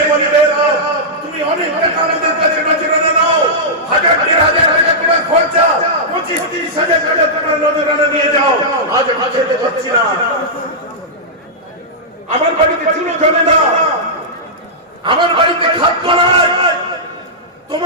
বলি মেহরাব তুমি অনেক টাকা আমাদের কাছে নজরানা নাও, 1000-1500 টাকা তোমার খরচা, 25-30 হাজার টাকা তোমার নজরানা নিয়ে যাও, আজ আমি খেতে পাচ্ছি না, আমার বাড়িতে চুলো জমে না, আমার বাড়িতে খাদ্য নাই,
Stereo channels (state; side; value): normal; both; correlation -0.12